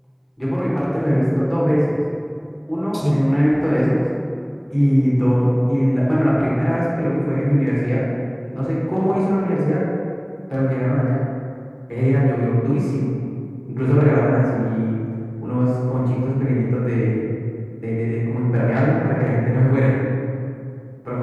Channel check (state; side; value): identical; both; correlation 1.00